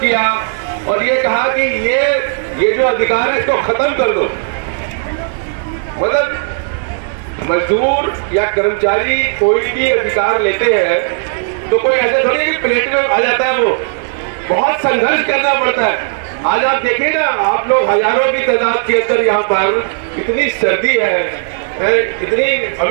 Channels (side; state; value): left; silent; digital silence